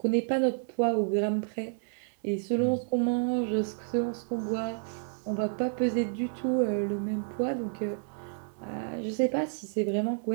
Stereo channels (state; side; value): silent; left; digital silence